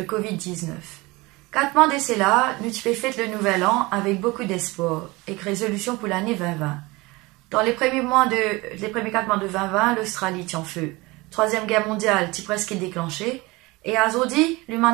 Covid-19? 4 mois d'essai là, nous tu fait le nouvel an avec beaucoup d'espoir et résolution pour l'année 2020. Dans les premiers 4 mois de 2020, l'Australie tient feu. Troisième guerre mondiale t'y presque déclenchée. Et à aujourd'hui,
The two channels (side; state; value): left; quieter; 22.9 dB